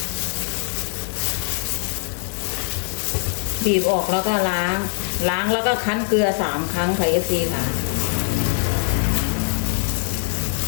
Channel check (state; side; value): silent; right; digital silence